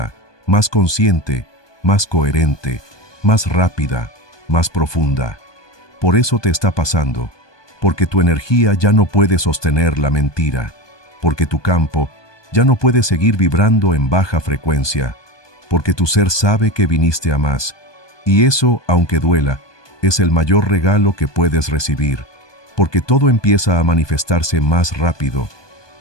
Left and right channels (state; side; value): late; right; 1.2 ms